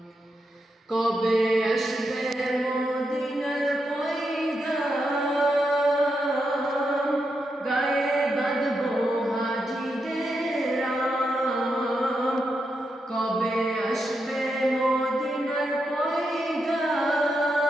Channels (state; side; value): normal; both; correlation 0.84